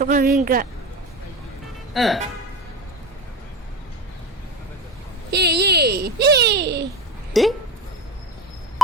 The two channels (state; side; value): normal; both; correlation 0.27